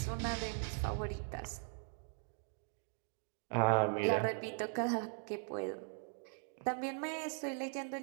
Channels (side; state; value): left; silent; 51 dB below the other